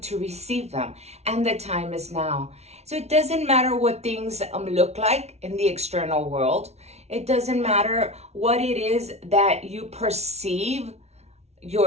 receive them, and the time is now. So it doesn't matter what things look like in the external world. It doesn't matter what it is that you perceive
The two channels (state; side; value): late; left; 0.31 ms